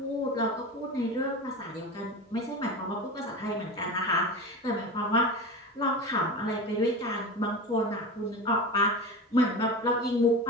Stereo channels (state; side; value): normal; both; correlation 0.27